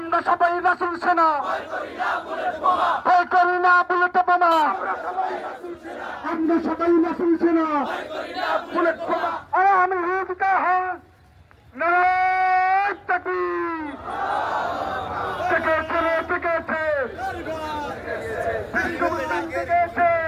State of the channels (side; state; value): both; identical; correlation 1.00